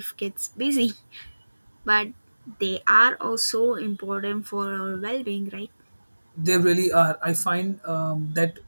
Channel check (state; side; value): inverted; both; correlation -1.00